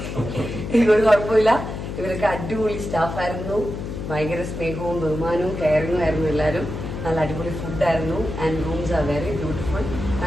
എനിക്കൊരു കുഴപ്പമില്ല. ഇവരൊക്കെ അടിപൊളി സ്റ്റാഫായിരുന്നു. ഭയങ്കര സ്നേഹവും ബഹുമാനവും കെയറിങ്ങും ആയിരുന്നു എല്ലാവരും. നല്ല അടിപൊളി ഫുഡായിരുന്നു. And rooms are very beautiful.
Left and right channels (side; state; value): left; noise; hum, 6 dB below the sound